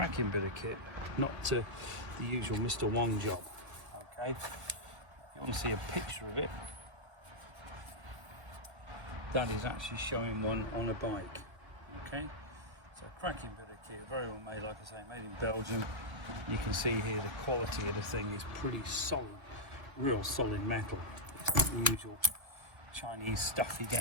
bit of kit, not the usual Mr. One job. Okay, if you want to see a picture of it, that is actually showing one on a bike. Okay, so cracking bit of kit, very well made, like I say, made in Belgium. You can see here the quality of the thing is pretty solid, real solid metal. It's not the usual Chinese stuff you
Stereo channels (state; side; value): late; left; 1.1 ms